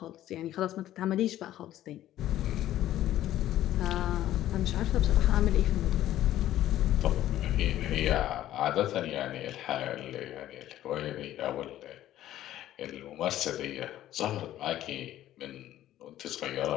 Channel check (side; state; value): right; quieter; 13.2 dB